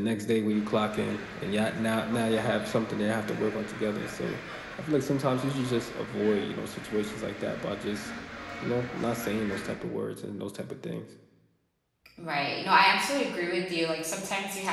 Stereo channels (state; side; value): identical; both; correlation 1.00